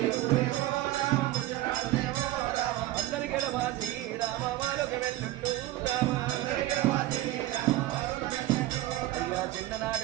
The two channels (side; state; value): left; quieter; 15.8 dB